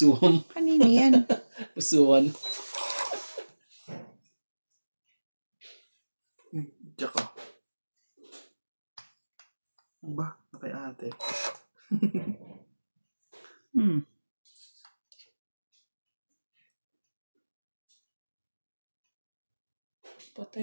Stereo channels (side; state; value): both; inverted; correlation -1.00